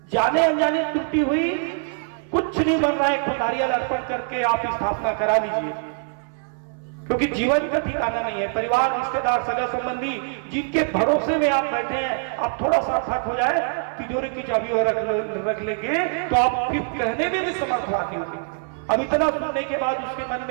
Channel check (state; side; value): silent; left; 61 dB below the other